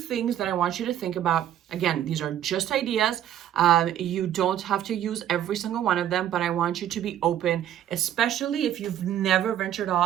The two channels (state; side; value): quieter; left; 11.1 dB